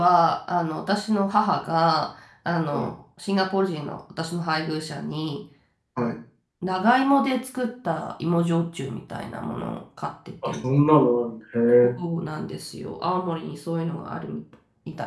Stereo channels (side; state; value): both; identical; correlation 1.00